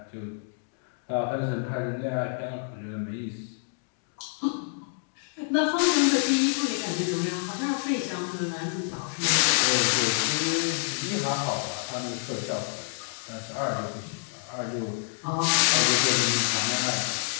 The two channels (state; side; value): silent; right; digital silence